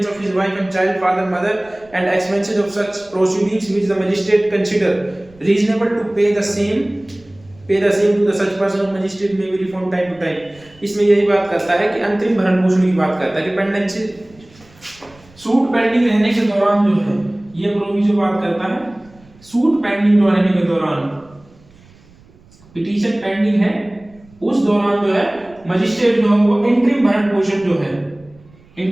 of his wife and child, father, mother, and expenses of such proceedings which the magistrate consider reasonable to pay the same to the such person of magistrate may be reformed time to time। इसमें यही बात करता है कि अंतरिम भरण पोषण की बात करता है कि पेंडेंसी सूट पेंडिंग रहने के दौरान जो है, ये प्रोविजन बात करता है सूट पेंडिंग जो रहने के दौरान, पिटीशन पेंडिंग है उस दौरान जो है मजिस्ट्रेट जो है वो इंटरिम भरण पोषण जो है,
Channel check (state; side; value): noise; right; rumble, 27 dB below the sound